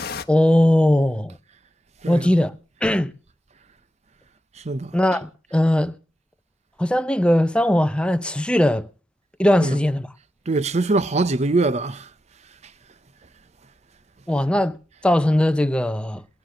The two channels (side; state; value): both; normal; correlation 0.90